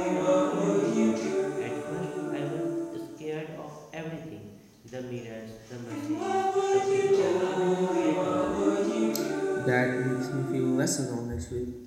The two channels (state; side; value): identical; both; correlation 1.00